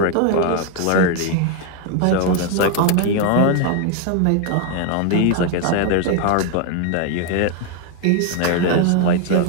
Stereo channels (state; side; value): different; both; correlation 0.01